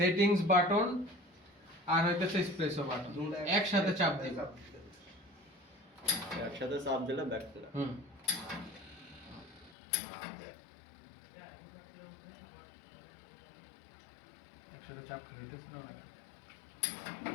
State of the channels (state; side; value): drops out; right; at 9.8 s